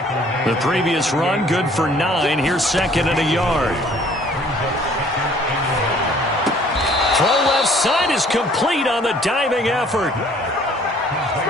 The previous run good for 9. Here's 2nd and a yard. Throw left side is complete on the diving effort.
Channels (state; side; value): normal; both; correlation 0.57